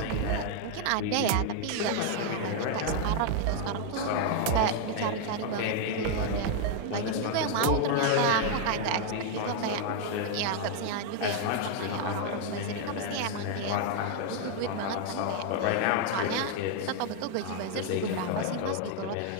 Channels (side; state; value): both; different; correlation 0.00